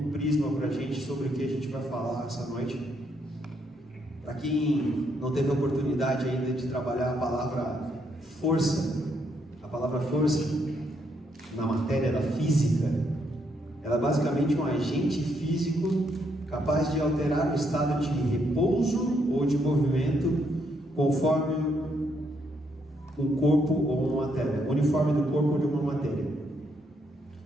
prisma para a gente sobre o que a gente vai falar essa noite. Para quem não teve a oportunidade ainda de trabalhar a palavra força na matéria da física, ela é basicamente um agente físico capaz de alterar o estado de repouso ou de movimento conforme um corpo ou uma matéria, uniforme do corpo ou de uma matéria.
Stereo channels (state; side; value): normal; both; correlation 0.75